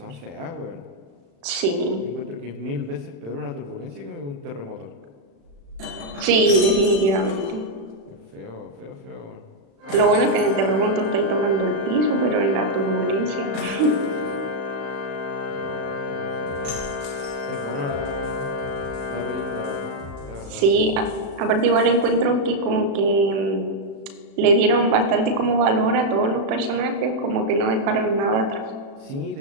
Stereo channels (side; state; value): left; late; 36 ms